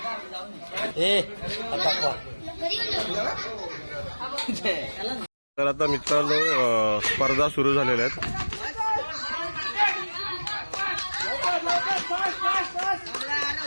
तर आता मित्रांनो स्पर्धा सुरू झालेल्या आहेत.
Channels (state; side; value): inverted; both; correlation -1.00